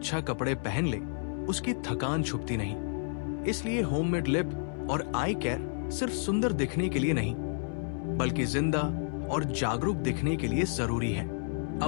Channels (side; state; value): right; silent; 57 dB below the other